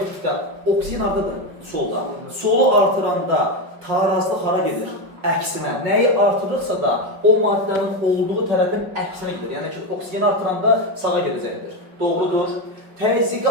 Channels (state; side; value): late; left; 5.5 ms